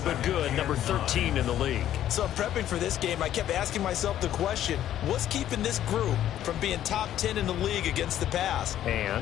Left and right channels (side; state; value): right; quieter; 11.7 dB